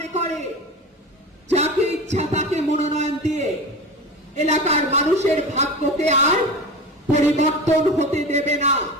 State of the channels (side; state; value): both; normal; correlation 0.28